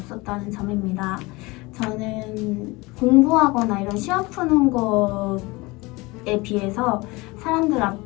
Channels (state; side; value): quieter; right; 23.4 dB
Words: 점입니다. 저는 공부하거나 이런 시험 푸는 것에 비해서 사람들